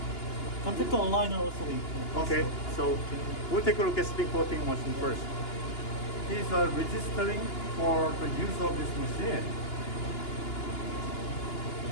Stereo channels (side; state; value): right; late; 2.9 ms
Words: Contact aligner also. Okay, so we'll take a look at spin coating machine first. He's registering for the use of this machine.